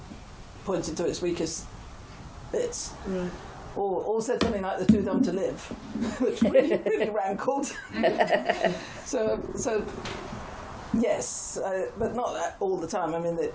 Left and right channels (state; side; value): identical; both; correlation 1.00